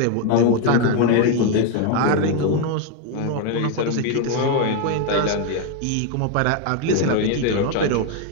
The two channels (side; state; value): both; different; correlation 0.01